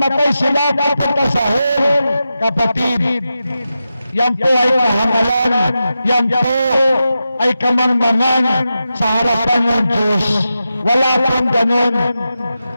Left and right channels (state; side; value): inverted; both; correlation -0.91